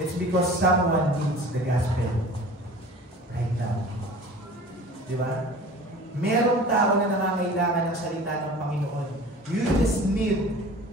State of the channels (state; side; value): normal; both; correlation 0.42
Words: because someone needs the gospel right now. Diba? Merong tao na nangangailangan ng salita ng Panginoon. You just need